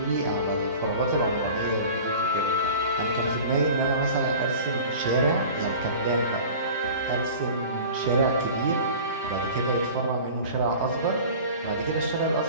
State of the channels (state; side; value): inverted; both; correlation -0.40